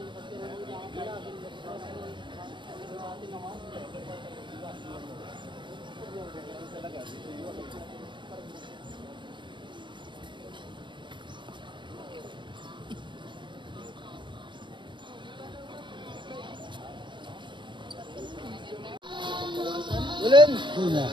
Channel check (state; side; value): late; left; 0.23 ms